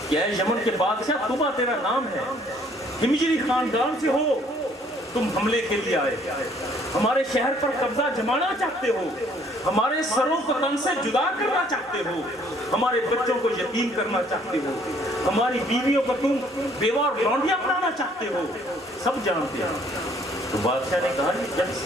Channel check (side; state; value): both; normal; correlation 0.61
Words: کہ اے یمن کے بادشاہ طوبہ تیرا نام ہے، ہمجری خاندان سے ہو، تم حملے کے لیے آئے، ہمارے شہر پر قبضہ جمانا چاہتے ہو، ہمارے سروں کو تن سے جدا کرنا چاہتے ہو، ہمارے بچوں کو یتیم کرنا چاہتے ہو، ہماری بیویوں کو تم بیوہ اور لونڈیاں بنانا چاہتے ہو، سب جانتے ہیں۔ تو بادشاہ نے کہا جب